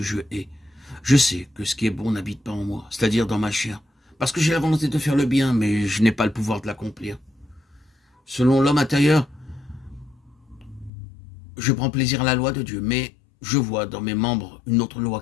je hais. Je sais que ce qui est bon n'habite pas en moi, c'est-à-dire dans ma chair, parce que j'ai la volonté de faire le bien, mais je n'ai pas le pouvoir de l'accomplir. Selon l'homme intérieur, je prends plaisir à la loi de Dieu, mais je vois dans mes membres une autre loi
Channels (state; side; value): drops out; right; at 10.9 s